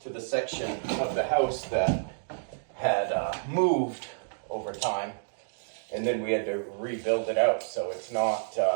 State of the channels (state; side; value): silent; left; digital silence